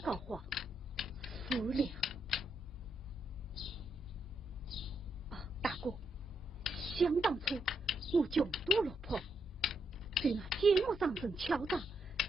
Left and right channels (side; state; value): both; normal; correlation 0.79